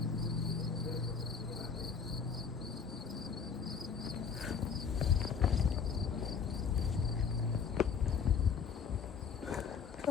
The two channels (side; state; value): right; quieter; 6.2 dB